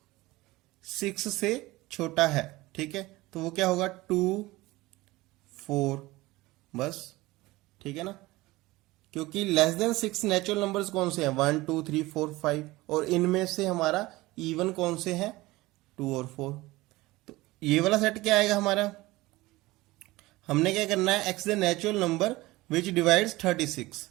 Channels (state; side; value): quieter; left; 19.8 dB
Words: 6 से छोटा है। ठीक है। तो वो क्या होगा? 2, 4, बस। ठीक है ना, क्योंकि लेस देन 6 नेचुरल नंबर्स कौन से हैं? 1, 2, 3, 4, 5, और इनमें से हमारा इवन कौन से हैं? 2 और 4। ये वाला सेट क्या आएगा हमारा, हमने क्या करना है, x the natural number which divides 36।